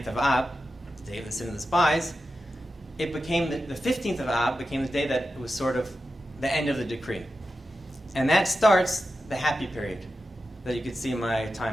of Ab, the day of the sin of the spies, it became the 15th of Ab became the day that it was sort of the end of the decree. And that starts the happy period that you could see in my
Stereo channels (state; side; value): normal; both; correlation 0.91